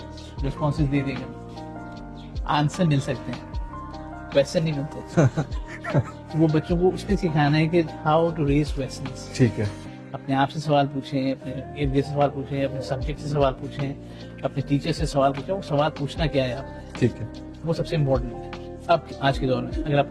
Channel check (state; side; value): identical; both; correlation 1.00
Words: رسپانسز دے دے گا. آنسر مل سکتے ہیں, کویشچن نہیں ملتے. وہ بچوں کو اس پہ سکھانا ہے کہ ہاؤ ٹو ریز کویشچنز. ٹھیک ہے. اپنے آپ سے سوال پوچھیں, اپنے ارد گرد سے سوال پوچھیں, اپنے سبجیکٹ سے سوال پوچھیں, اپنے ٹیچر سے سوال پوچھیں. وہ سوال پوچھنا کیا ہے آپ نے, ٹھیک ہے. وہ سب سے امپورٹنٹ ہے. اب آج کے دور میں اگر